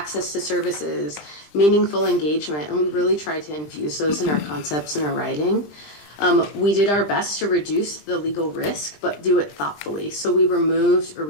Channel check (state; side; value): late; right; 20 ms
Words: to services, meaningful engagement, and we really tried to infuse those in our concepts and our writing. We did our best to reduce the legal risk, but do it thoughtfully. So we removed or